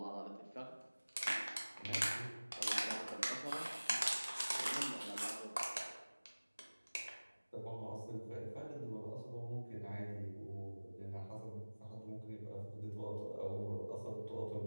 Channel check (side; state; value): both; inverted; correlation -1.00